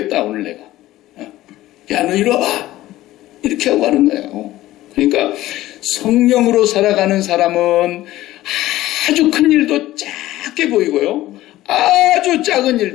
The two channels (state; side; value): quieter; right; 15.7 dB